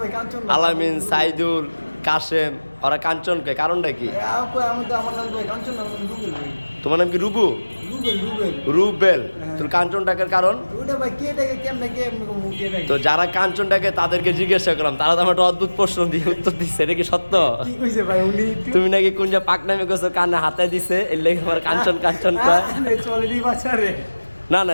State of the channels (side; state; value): both; inverted; correlation -1.00